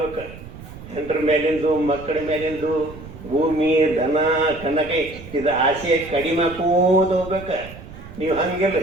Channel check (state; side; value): noise; right; rumble, 15 dB below the sound